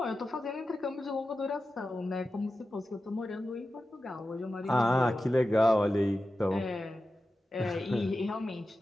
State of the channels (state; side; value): normal; both; correlation 0.93